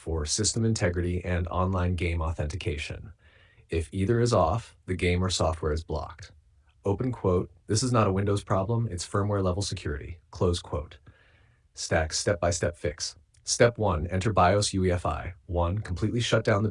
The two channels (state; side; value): identical; both; correlation 1.00